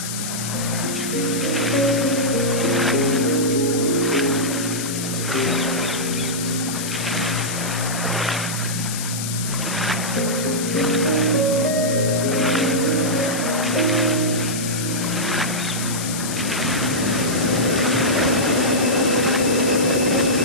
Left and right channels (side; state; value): left; noise; hiss, 6 dB below the sound